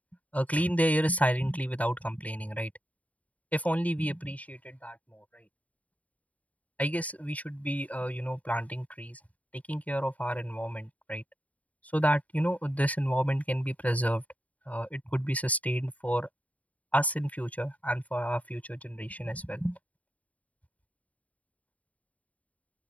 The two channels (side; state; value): right; late; 0.071 ms